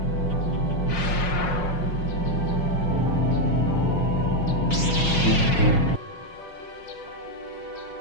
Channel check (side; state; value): right; late; 5.5 ms